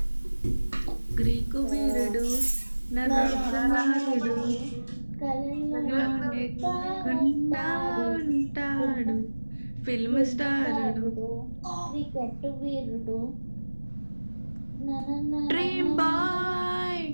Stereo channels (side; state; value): both; inverted; correlation -1.00